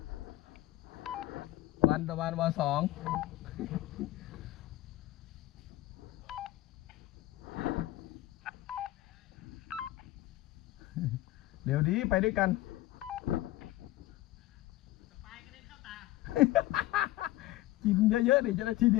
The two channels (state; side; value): quieter; right; 16.4 dB